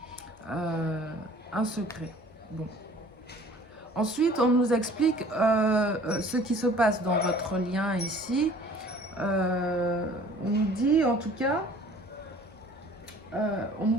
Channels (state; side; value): normal; both; correlation 0.50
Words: un secret. Bon. Ensuite, on nous explique ce qui se passe dans votre lien ici. On nous dit, en tout cas, on